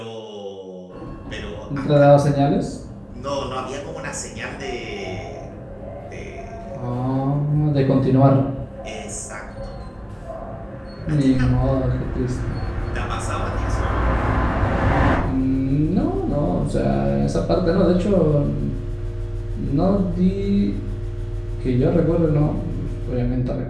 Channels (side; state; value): both; identical; correlation 1.00